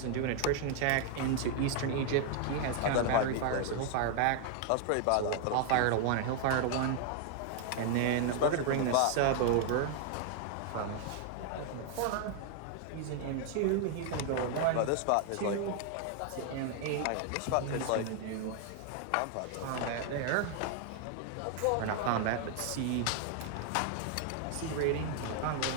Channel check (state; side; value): different; both; correlation 0.00